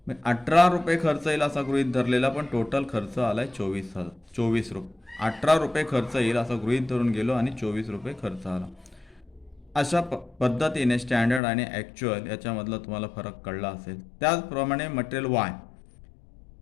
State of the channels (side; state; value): right; drops out; at 11.4 s